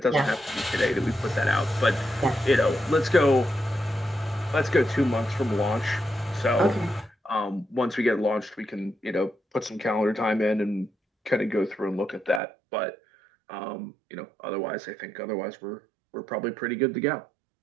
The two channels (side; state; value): left; drops out; at 12.4 s